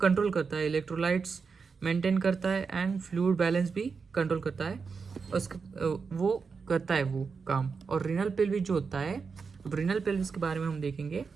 कंट्रोल करता है, इलेक्ट्रोलाइट्स मेंटेन करता है एंड फ्लूइड बैलेंस भी कंट्रोल करता है, वो करता है वो काम. और रीनल पेल्विस जो होता है, अब रीनल पेल्विस के बारे में हम देखेंगे.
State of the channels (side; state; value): left; quieter; 5.2 dB